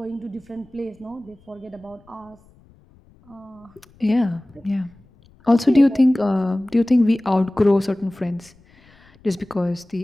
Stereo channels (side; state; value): left; noise; rumble, 29 dB below the sound